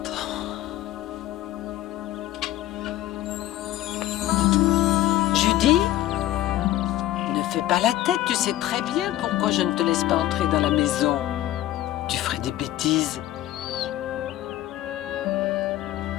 Judy? Ne fais pas la tête, tu sais très bien pourquoi je ne te laisse pas entrer dans la maison. Tu ferais des bêtises.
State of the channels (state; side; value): quieter; right; 14.3 dB